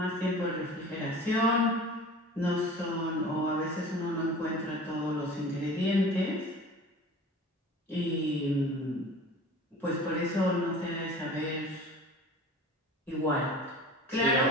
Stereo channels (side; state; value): both; normal; correlation 0.40